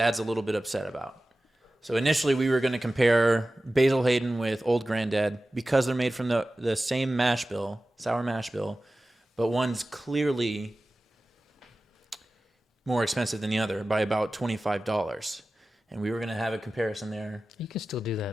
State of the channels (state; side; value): normal; both; correlation 0.96